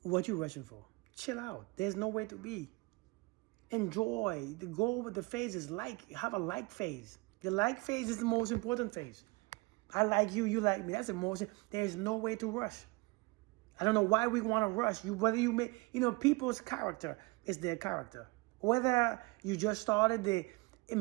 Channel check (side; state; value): left; quieter; 25.5 dB